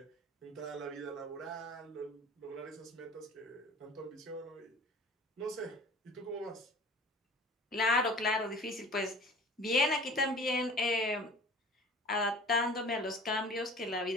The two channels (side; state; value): both; normal; correlation 0.43